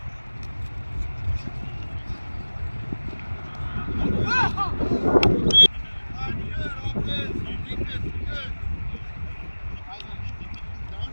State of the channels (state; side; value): inverted; both; correlation -1.00